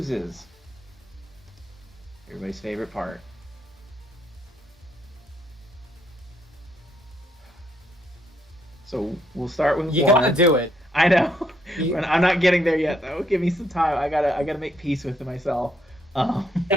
Everybody's favorite part. So we'll start with You one. gotta do it. I know. You- I'm not getting there yet, though. Give me some time. I gotta make peace with myself.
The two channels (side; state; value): both; normal; correlation 0.73